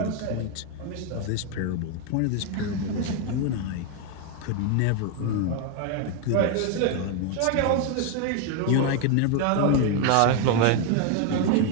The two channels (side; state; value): both; different; correlation 0.01